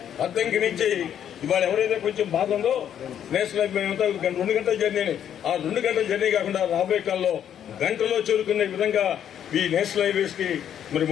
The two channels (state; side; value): quieter; right; 9.6 dB